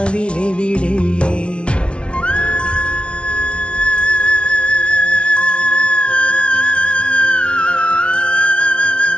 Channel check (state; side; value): late; right; 0.059 ms